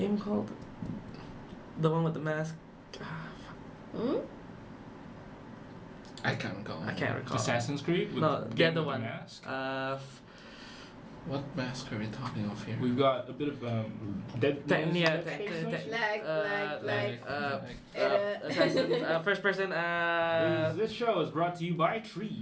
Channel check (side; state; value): both; identical; correlation 1.00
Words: called? The one with the mask. I can't recall. I can't recall. Assassin's Creed? With No, the other one. Mask? What mask are we talking of here? We've got a bit of Dead first person. This show is brought to you by